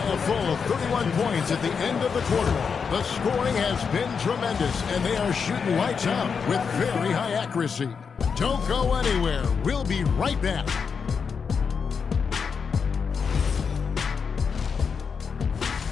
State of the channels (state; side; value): quieter; right; 6.0 dB